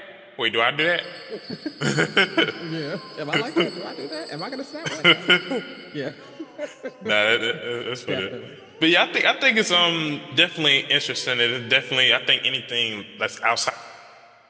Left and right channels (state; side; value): identical; both; correlation 1.00